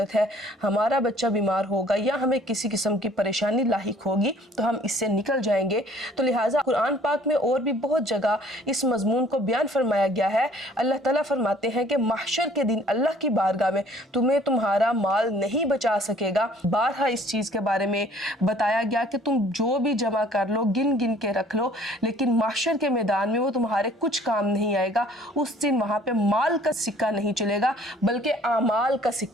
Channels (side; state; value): both; normal; correlation 0.56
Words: है, हमारा बच्चा बीमार होगा या हमें किसी किस्म की परेशानी लाहिक होगी तो हम इससे निकल जाएंगे। तो लिहाजा कुरान पाक में और भी बहुत जगह इस मज़मून को बयान फरमाया गया है। अल्लाह ताला फरमाते हैं कि महशर के दिन अल्लाह की बारगाह में तुम्हें तुम्हारा माल नहीं बचा सकेगा। बारहा इस चीज़ के बारे में बताया गया कि तुम जो भी जमा कर लो, गिन गिन के रख लो, लेकिन महशर के मैदान में वो तुम्हारे कुछ काम नहीं आएगा। उस दिन वहाँ पे माल का सिक्का नहीं चलेगा बल्कि आमाल का